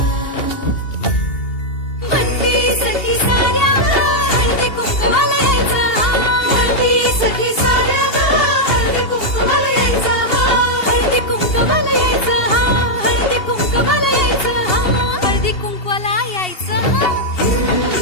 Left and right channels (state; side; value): late; right; 2.8 ms